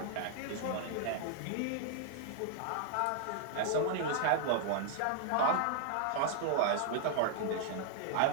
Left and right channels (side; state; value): both; different; correlation -0.01